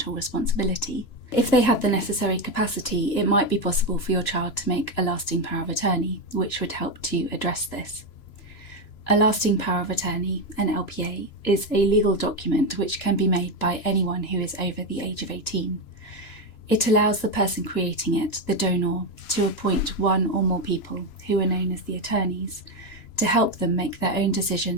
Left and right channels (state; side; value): late; right; 3.0 ms